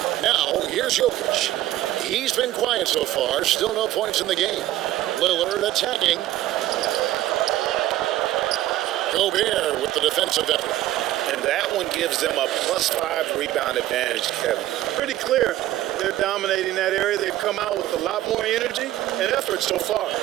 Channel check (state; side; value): quieter; left; 14.4 dB